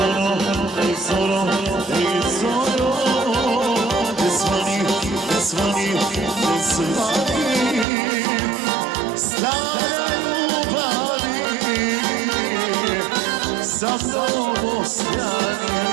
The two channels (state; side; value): drops out; left; at 7.9 s